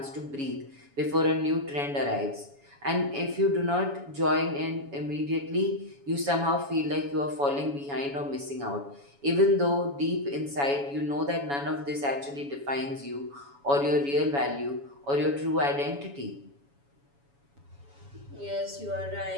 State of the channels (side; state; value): left; late; 7.1 ms